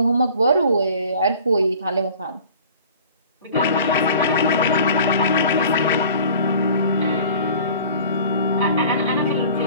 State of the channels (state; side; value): inverted; both; correlation -0.46